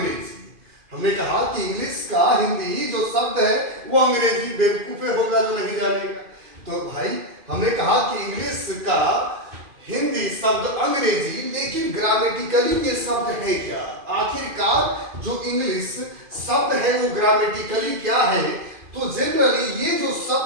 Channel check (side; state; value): left; late; 2.5 ms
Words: हमने कहा कि इंग्लिश का हिंदी जो शब्द है वो अंग्रेजी। बेवकूफे होगा जो नहीं जानेगा। तो भाई हमने कहा कि इंग्लिश का हिंदी शब्द अंग्रेजी, लेकिन ग्रामेटिकली ये शब्द है क्या? आखिरकार जो इंग्लिश शब्द है वो ग्रामेटिकली क्या है? तो जनरली ये जो